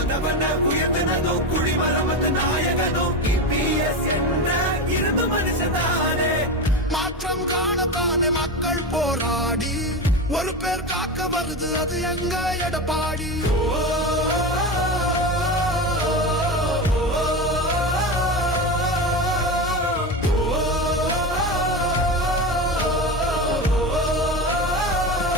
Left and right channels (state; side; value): normal; both; correlation 0.21